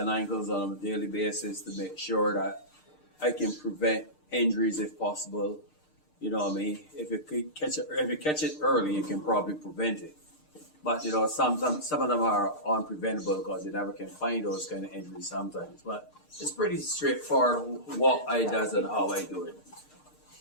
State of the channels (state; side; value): late; right; 6.6 ms